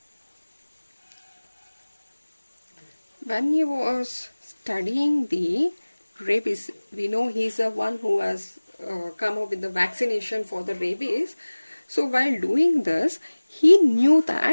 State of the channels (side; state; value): both; inverted; correlation -1.00